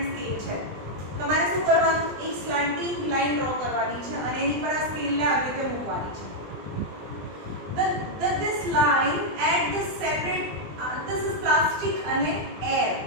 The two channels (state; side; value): late; left; 20 ms